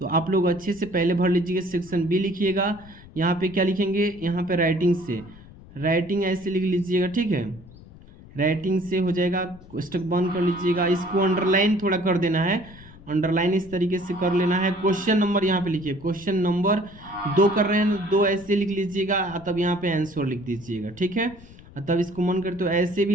आप लोग अच्छे से पहले भर लीजिएगा। सेक्शन बी लिखिएगा, यहाँ पे क्या लिखेंगे, यहाँ पे राइटिंग से, राइटिंग ऐसे लिख लीजिएगा, ठीक है। राइटिंग से हो जाएगा, स्टक बंद कर लीजिएगा। इसको अंडरलाइन थोड़ा कर देना है, अंडरलाइन इस तरीके से कर लेना है। क्वेश्चन नंबर यहाँ पे लिखिए, क्वेश्चन नंबर 2 कर रहे हैं, 2 ऐसे लिख लीजिएगा, तब यहाँ पे आंसर लिख दीजिएगा, ठीक है। तब इसको मन करे तो ऐसे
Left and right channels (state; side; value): noise; left; rumble, 20 dB below the sound